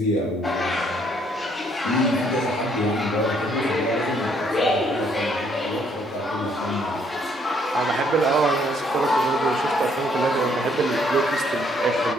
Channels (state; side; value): normal; both; correlation 0.67